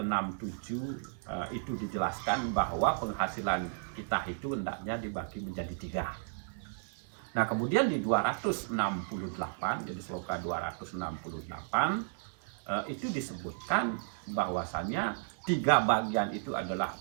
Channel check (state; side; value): silent; left; digital silence